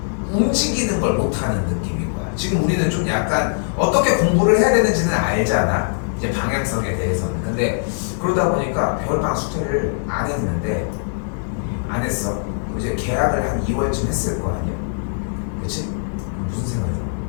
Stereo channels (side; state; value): right; silent; digital silence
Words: 움직이는 걸 못하는 느낌인 거야. 지금 우리는 좀 약간 어떻게 공부를 해야 되는지는 알잖아. 이제 방향성에 대해서는. 근데 그러다 보니까 겨울방학 숙제를 안 했는데 안 했어. 이제 계약을 한 2월쯤 했을 거 아니야. 그치? 무슨 생각이 들어?